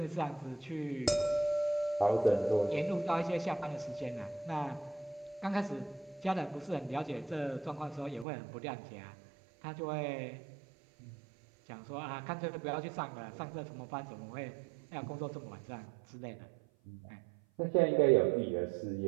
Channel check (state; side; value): drops out; left; at 8.2 s